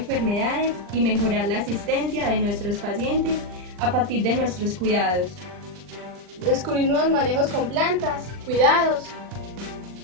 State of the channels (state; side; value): late; left; 39 ms